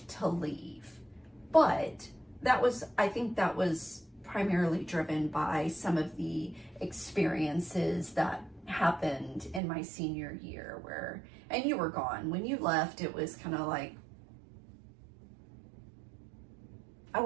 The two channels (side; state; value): left; drops out; at 9.6 s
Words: to leave, but I think that was primarily driven by some of the experiences that happened in my senior year and you were gone. When you left, it was kind of like, I